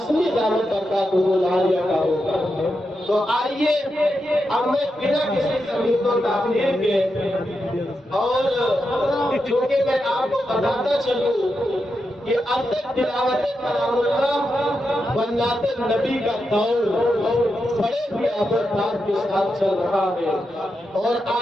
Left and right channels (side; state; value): both; normal; correlation 0.87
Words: دامت برکاتہم العالیہ کا ہوگا۔ تو آئیے اب میں بنا کسی تمہید و تاخیر کے، اور چونکہ میں آپ کو بتاتا چلوں کہ اب تک تلاوت کلام اللہ بنات نبی کا دور بڑے ہی آبادات کے ساتھ چل رہا ہے، اور